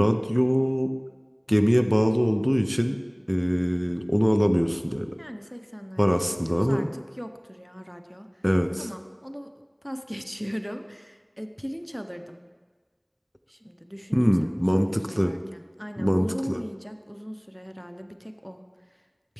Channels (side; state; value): both; identical; correlation 1.00